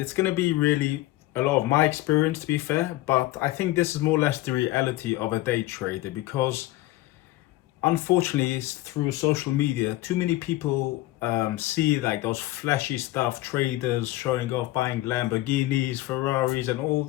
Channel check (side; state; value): right; quieter; 17.4 dB